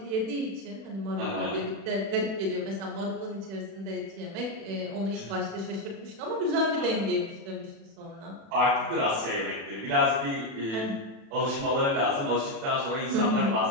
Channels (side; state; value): left; late; 36 ms